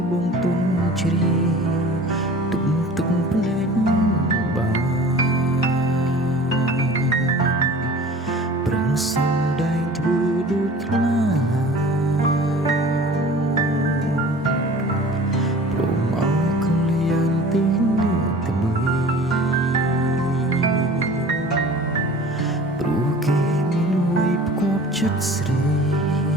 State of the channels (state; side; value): normal; both; correlation 0.43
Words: បងទុំជ្រាយទុំទឹកភ្នែកបានប្រឹងសំដែងធ្វើដូចខ្លាព្រមអោកលៀនទីនេះទៅមើលព្រោះគេមានអ្វីផ្គាប់ចិត្តស្រី